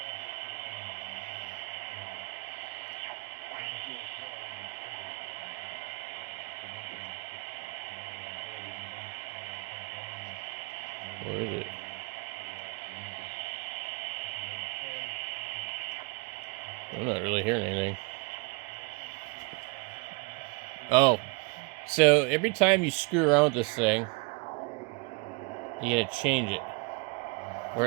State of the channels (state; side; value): quieter; left; 29.9 dB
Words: Where is it? I'm not really hearing anything. Oh, so every time you screw around with this thing, you gotta change it. Where